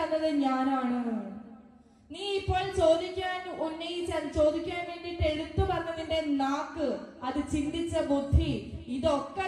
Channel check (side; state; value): both; identical; correlation 1.00